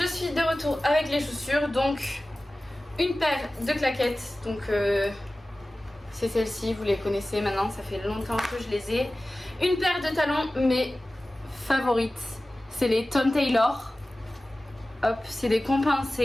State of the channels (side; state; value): both; normal; correlation 0.96